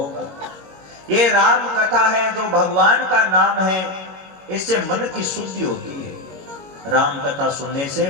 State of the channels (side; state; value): left; late; 21 ms